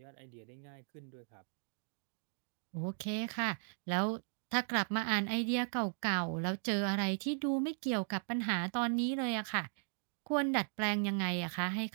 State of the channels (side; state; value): left; silent; digital silence